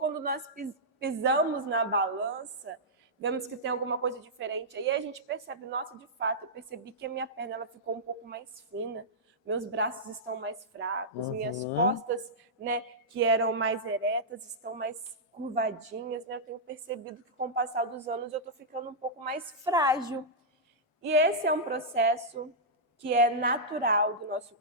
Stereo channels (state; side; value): normal; both; correlation -0.11